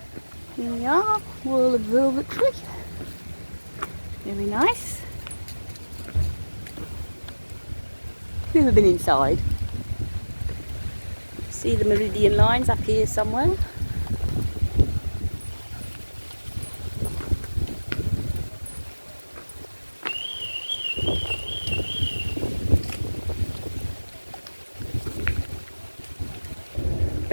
Here we are. Royal Observatory. Very nice. Never been inside. See the meridian lines up here somewhere.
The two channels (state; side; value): inverted; both; correlation -1.00